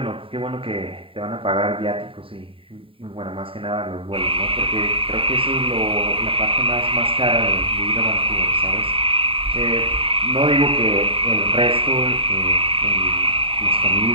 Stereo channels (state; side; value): late; left; 0.26 ms